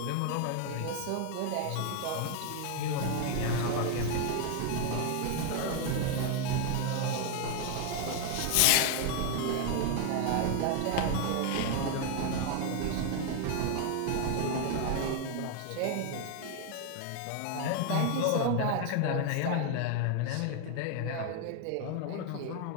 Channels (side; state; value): both; different; correlation 0.00